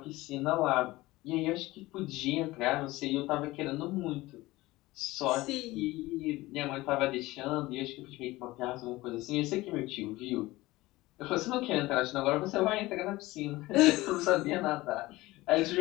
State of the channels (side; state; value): right; quieter; 19.2 dB